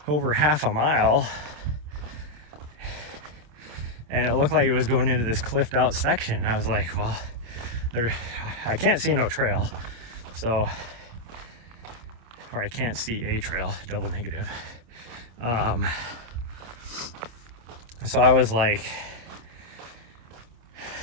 over half a mile, and it looked like it was going into this cliffed out section, and I was like, well, I can't see no trail, so, or I can't see a trail, double negative. So I was like,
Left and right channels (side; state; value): left; late; 26 ms